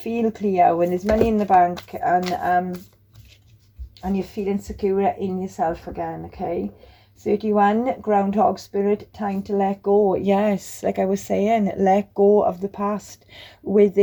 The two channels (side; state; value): both; identical; correlation 1.00